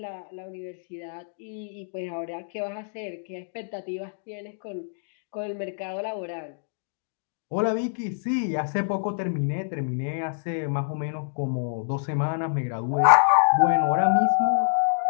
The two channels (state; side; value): silent; right; digital silence